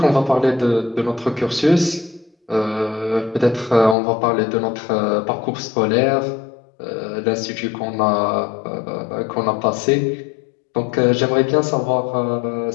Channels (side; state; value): right; drops out; at 4.0 s